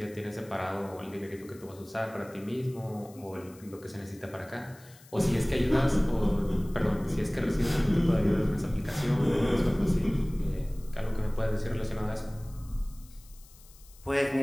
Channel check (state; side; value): noise; left; hiss, 24 dB below the sound